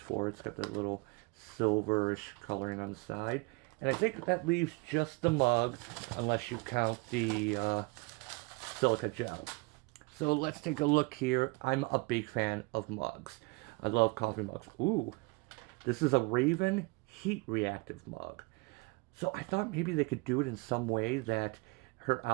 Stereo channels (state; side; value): quieter; left; 27.5 dB